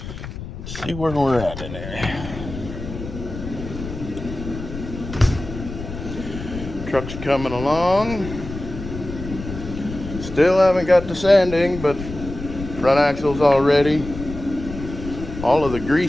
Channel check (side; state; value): left; noise; rumble, 10 dB below the sound